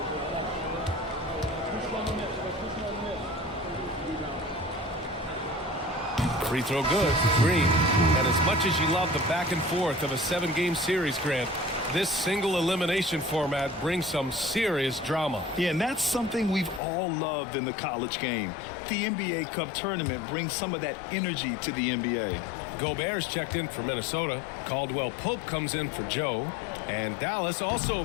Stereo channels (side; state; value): right; drops out; at 16.8 s